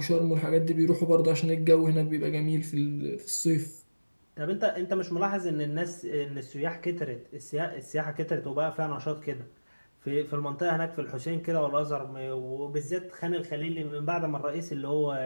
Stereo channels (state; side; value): inverted; both; correlation -1.00